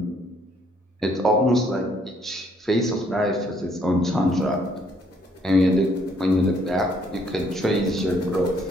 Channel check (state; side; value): normal; both; correlation 0.67